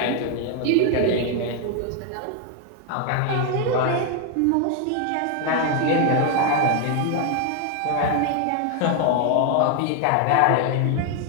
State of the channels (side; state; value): both; different; correlation 0.01